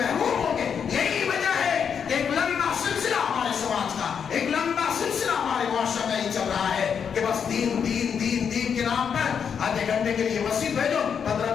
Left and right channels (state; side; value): quieter; right; 7.2 dB